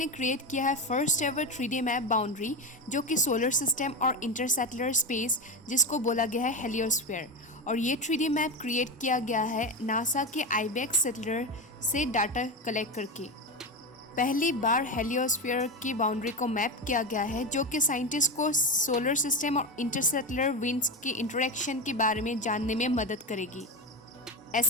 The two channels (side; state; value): both; normal; correlation 0.18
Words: क्रिएट किया है first ever 3D map boundary जो कि सोलर सिस्टम और इंटरसेटलर स्पेस जिसको बोला गया है हेलियोस्फीयर, और ये 3D मैप क्रिएट किया गया है नासा के आईबेक्स सेटलर से डाटा कलेक्ट करके। पहली बार हेलियोस्फीयर की बाउंड्री को मैप किया गया है जो कि साइंटिस्ट को सोलर सिस्टम और इंटरसेटलर विंड्स के इंटरेक्शन के बारे में जानने में मदद करेगी।